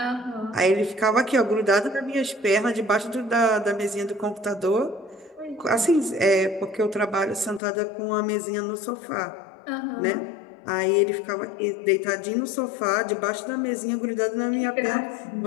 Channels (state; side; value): drops out; right; at 7.6 s